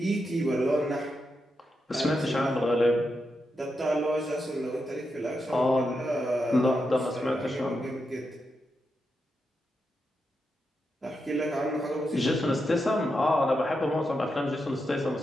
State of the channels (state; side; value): normal; both; correlation 0.86